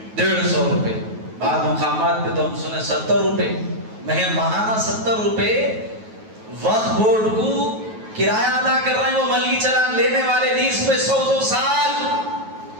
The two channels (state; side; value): late; left; 9.3 ms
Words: 150 روپے، بعض مقامات پہ تو ہم سنے 70 روپے، ماہانہ 70 روپے وقف بورڈ کو کرایہ ادا کر رہے ہیں۔ وہ ملکی چلان لینے والے لیز پہ 100 سال،